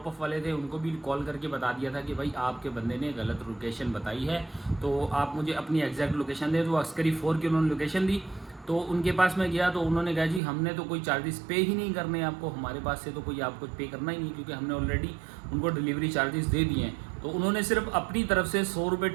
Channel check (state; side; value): drops out; left; at 10.4 s